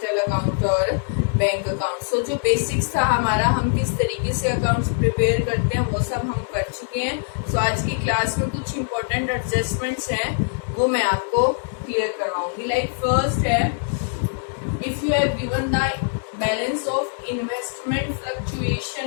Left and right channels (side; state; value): right; silent; 63 dB below the other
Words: account or bank account. So जो basics था हमारा, हम किस तरीके से accounts prepare करते हैं वो सब हम कर चुके हैं. सो आज की क्लास में कुछ इम्पोर्टेंट एडजस्टमेंट्स हैं वो मैं आपको क्लियर करवाऊंगी. लाइक फर्स्ट है, if you have given the balance of investment